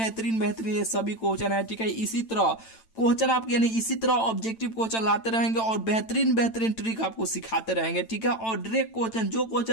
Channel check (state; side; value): late; right; 8.9 ms